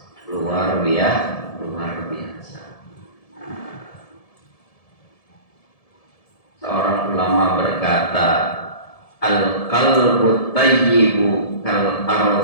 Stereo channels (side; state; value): right; late; 1.7 ms